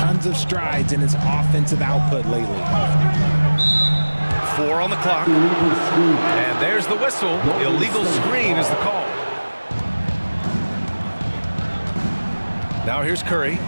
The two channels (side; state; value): both; inverted; correlation -1.00